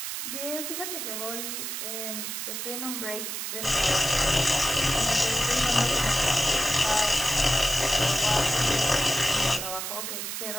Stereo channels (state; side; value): noise; right; hiss, 5 dB below the sound